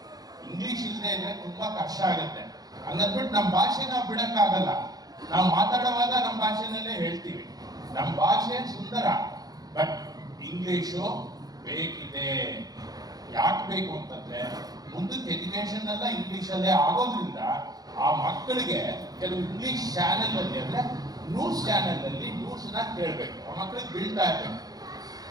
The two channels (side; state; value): left; late; 0.18 ms